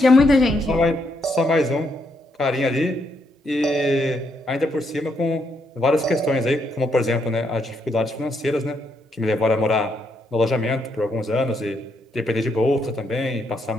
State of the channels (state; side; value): normal; both; correlation 0.77